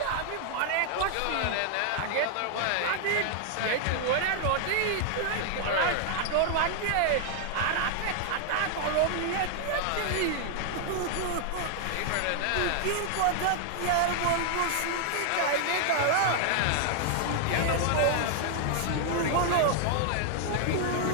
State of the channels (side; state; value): both; different; correlation 0.00